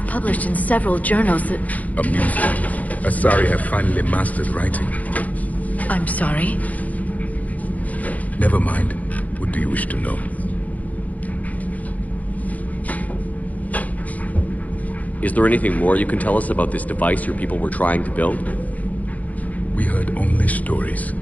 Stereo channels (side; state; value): right; late; 0.076 ms